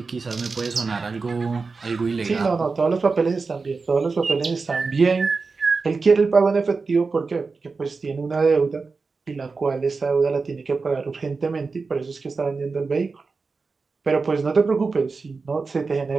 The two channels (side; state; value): left; quieter; 4.4 dB